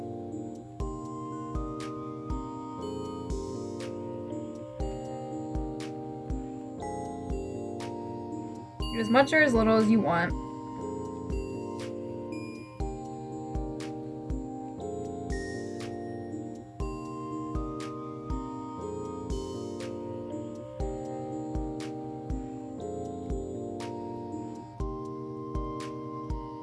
As much or as little as you want.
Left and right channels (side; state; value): both; identical; correlation 1.00